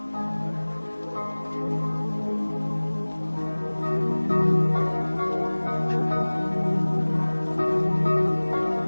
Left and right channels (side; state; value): both; inverted; correlation -1.00